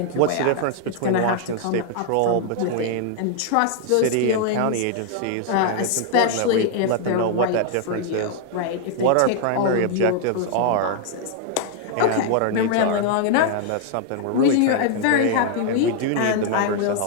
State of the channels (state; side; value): different; both; correlation 0.00